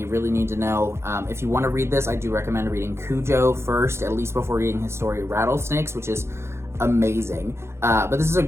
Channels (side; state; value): left; late; 0.13 ms